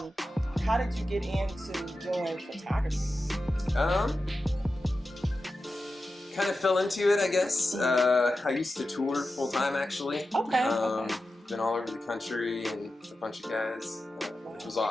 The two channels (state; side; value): normal; both; correlation 0.92